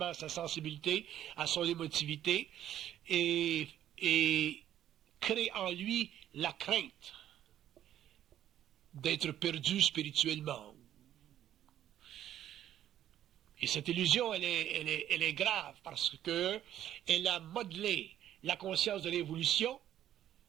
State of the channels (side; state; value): left; quieter; 11.5 dB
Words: à sa sensibilité, à son émotivité, et crée en lui la crainte d'être perdu spirituellement. Et cette illusion, elle est grave parce qu'elle a modelé la conscience de l'évolution.